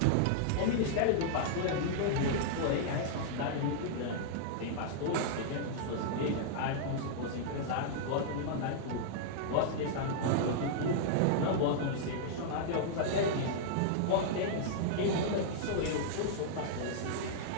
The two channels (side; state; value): both; different; correlation -0.02